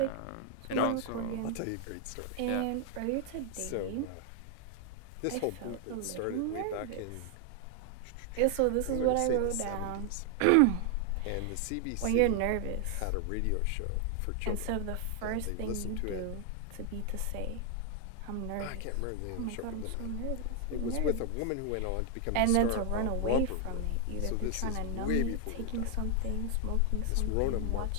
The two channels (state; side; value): different; both; correlation 0.00